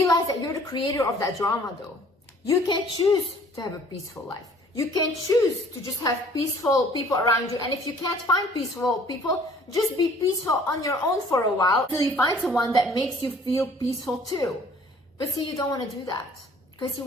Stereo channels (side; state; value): both; normal; correlation 0.55